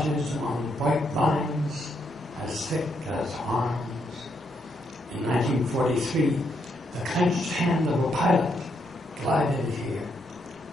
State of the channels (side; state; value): both; normal; correlation 0.77